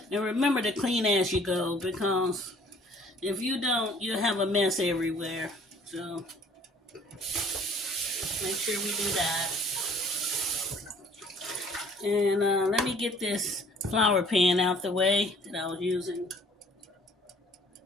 and remember to clean as you go, because if you don't, you'll have a mess everywhere. So make sure we do that. And let me get this flour pan out the way that I was using.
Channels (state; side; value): normal; both; correlation 0.56